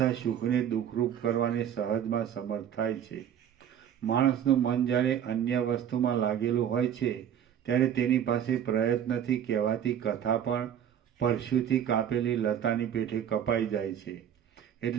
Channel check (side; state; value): left; quieter; 9.5 dB